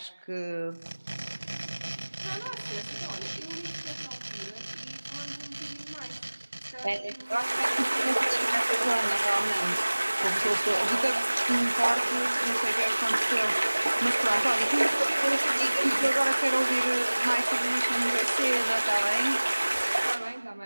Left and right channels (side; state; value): both; inverted; correlation -1.00